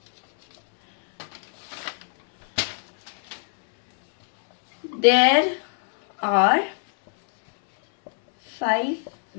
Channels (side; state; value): right; silent; digital silence